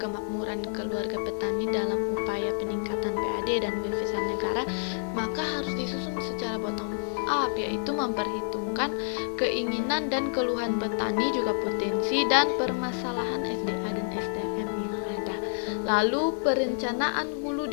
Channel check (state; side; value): silent; right; digital silence